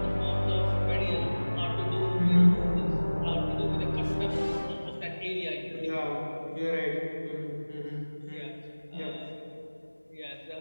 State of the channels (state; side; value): inverted; both; correlation -1.00